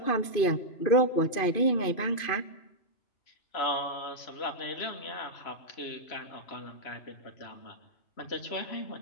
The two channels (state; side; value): late; right; 2.5 ms